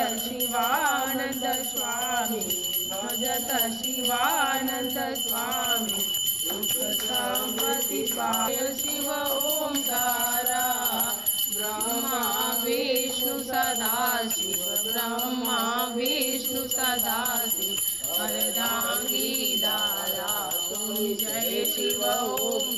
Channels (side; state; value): right; noise; rumble, 29 dB below the sound